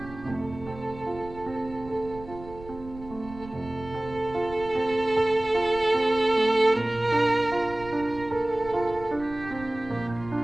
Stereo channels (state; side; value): noise; right; rumble, 16 dB below the sound